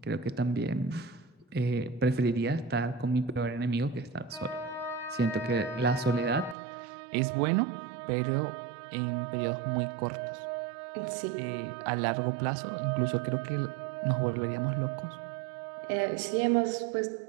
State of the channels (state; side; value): drops out; left; at 6.6 s